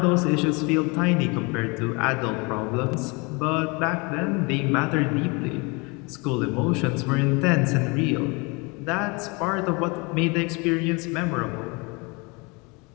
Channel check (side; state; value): right; quieter; 28.5 dB